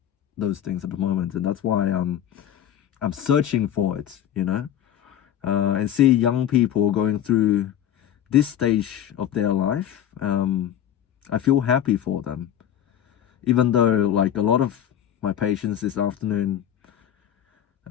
those things at the moment, and that's why I'm searching for it, and see young people going through this stage of their life. I feel happy for them, even though like a lot of my patients this afternoon,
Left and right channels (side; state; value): right; quieter; 10.3 dB